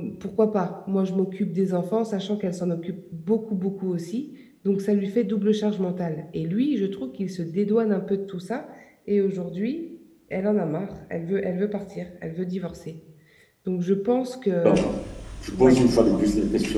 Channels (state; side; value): identical; both; correlation 1.00